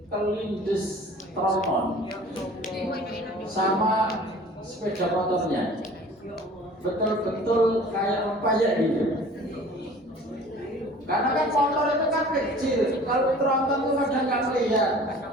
kelindes tronton sama sepeda motornya, betul-betul kayak rempayek gitu. Karena kan motor itu kan kecil, kalau tronton itu kadang nggak melihat,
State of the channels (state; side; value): normal; both; correlation 0.47